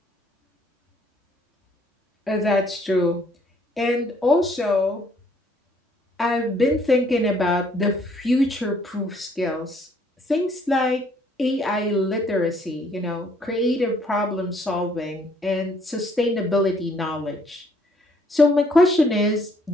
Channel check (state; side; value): normal; both; correlation 0.64